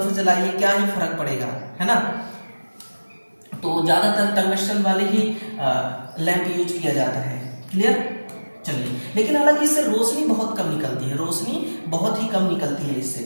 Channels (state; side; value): inverted; both; correlation -1.00